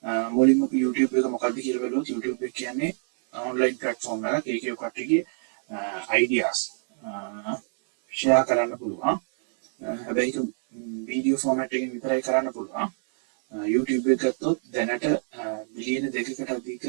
මුලින්ම YouTube එක මොකක්ද කියලා බලුවොත් YouTube එක කියන්නේ online platform එකක්. ඒකේ කට්ටියගේ ideas share කරන්න පුළුවන්. හැබැයි ඒක වීඩියෝ ෆෝමැට් එකකින් විතරයි කරන්න පුළුවන්. YouTube එක ගත්තොත් දැනට බිලියන 2කට අධික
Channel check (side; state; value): left; silent; 60 dB below the other